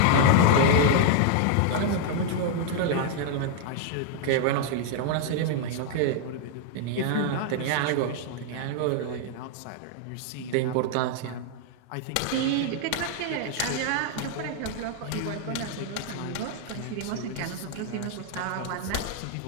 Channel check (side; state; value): both; different; correlation 0.00